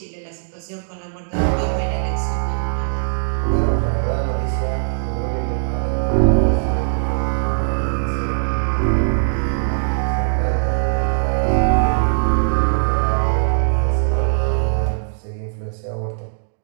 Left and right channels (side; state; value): left; silent; digital silence